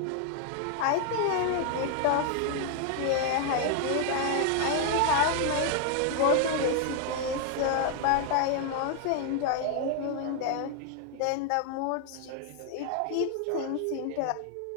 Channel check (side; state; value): both; different; correlation 0.00